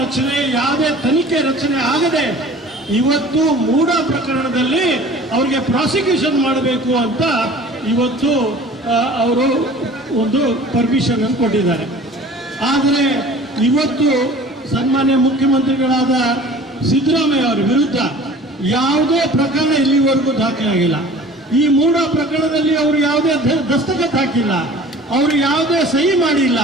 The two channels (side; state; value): both; normal; correlation 0.45